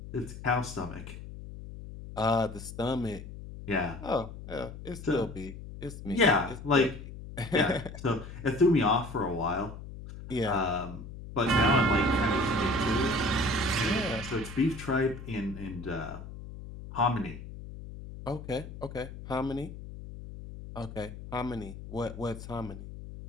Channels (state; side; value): noise; left; hum, 12 dB below the sound